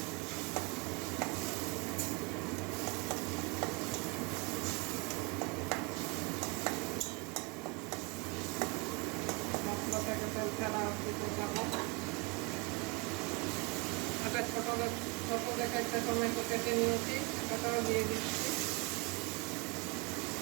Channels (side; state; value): left; quieter; 28.8 dB